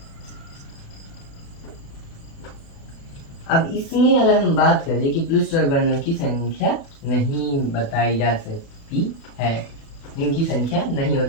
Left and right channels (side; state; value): right; late; 36 ms